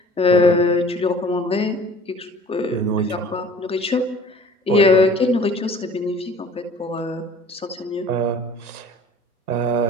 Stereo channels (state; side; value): normal; both; correlation 0.48